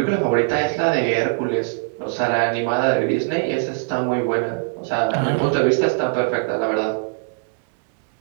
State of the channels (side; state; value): left; silent; digital silence